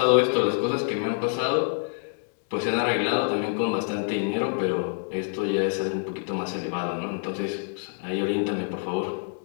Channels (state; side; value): silent; right; 60 dB below the other